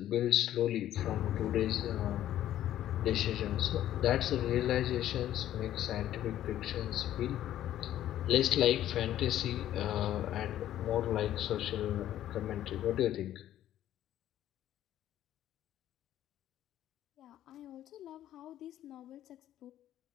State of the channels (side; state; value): right; quieter; 12.3 dB